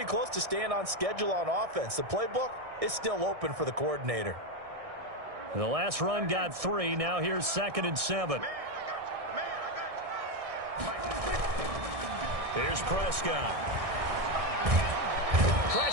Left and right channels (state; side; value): late; left; 1.6 ms